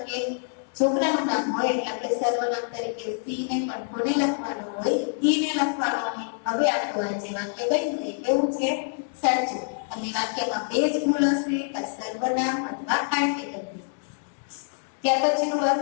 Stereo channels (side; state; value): right; silent; 61 dB below the other